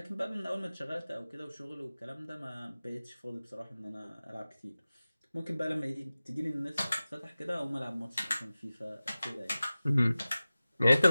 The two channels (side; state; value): both; inverted; correlation -0.97